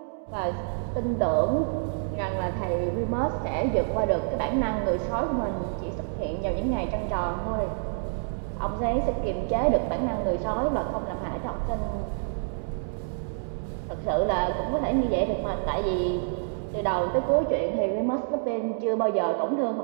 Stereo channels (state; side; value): silent; left; digital silence